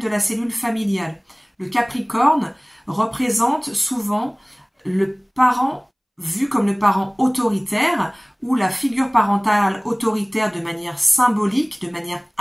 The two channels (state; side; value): identical; both; correlation 1.00